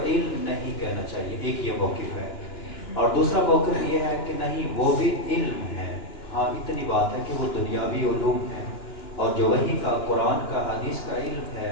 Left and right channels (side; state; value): right; late; 2.9 ms